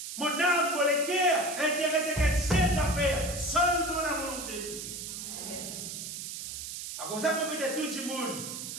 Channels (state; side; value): noise; right; hiss, 7 dB below the sound